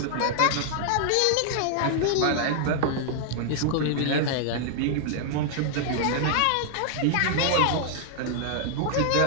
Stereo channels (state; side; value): different; both; correlation -0.01